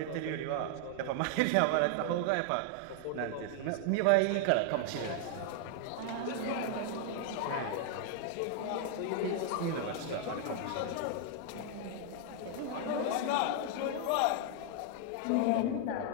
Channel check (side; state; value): both; different; correlation 0.00